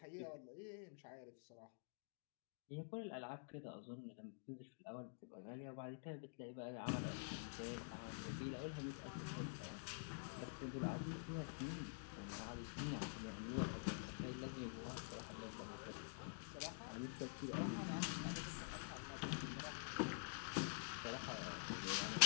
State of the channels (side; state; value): right; silent; digital silence